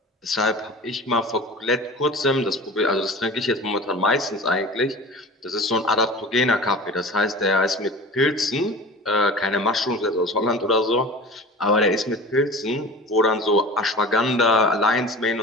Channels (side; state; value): both; normal; correlation 0.36